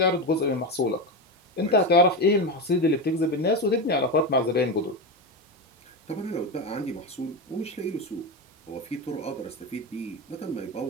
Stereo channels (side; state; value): both; normal; correlation 0.16